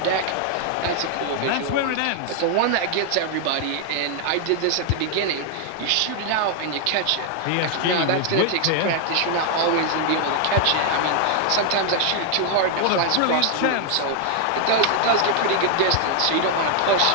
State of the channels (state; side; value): different; both; correlation 0.00